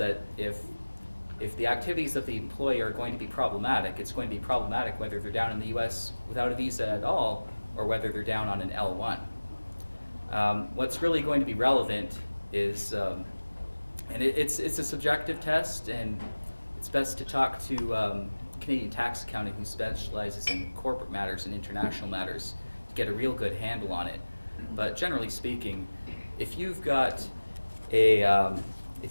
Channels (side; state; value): both; inverted; correlation -1.00